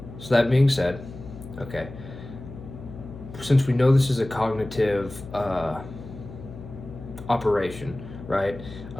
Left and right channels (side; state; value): left; noise; hum, 14 dB below the sound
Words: that being said, okay, since we know this is a cognitive operation, right?